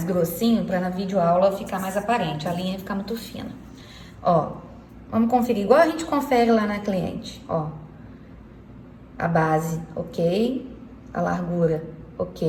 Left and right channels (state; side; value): identical; both; correlation 1.00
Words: grossinho pra na videoaula ficar mais aparente. A linha ficar muito fina. Ó. Vamos conferir igual a gente confere lá na cliente, ó. A base, ok. A largura,